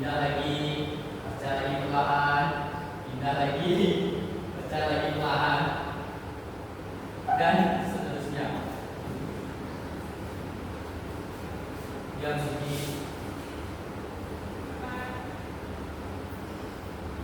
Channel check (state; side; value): identical; both; correlation 1.00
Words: lagi, baca lagi perlahan, pindah lagi, baca lagi perlahan, dan seterusnya. Yang segi